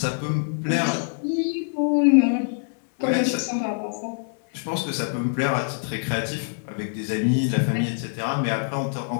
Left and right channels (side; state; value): right; silent; 62 dB below the other